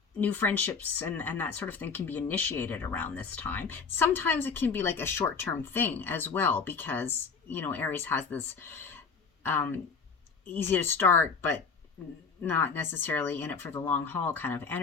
New friendships and that sort of thing can be initiated around this time. Sometimes it can be like a short-term thing as well, because, you know, Aries has this easy to start, but not necessarily in it for the long haul kind of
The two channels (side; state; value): right; quieter; 5.4 dB